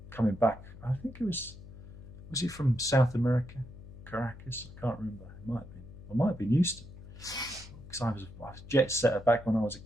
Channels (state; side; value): noise; left; hum, 16 dB below the sound